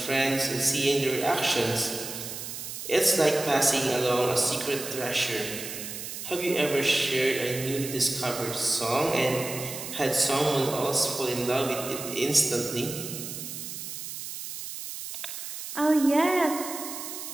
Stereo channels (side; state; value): right; noise; hiss, 8 dB below the sound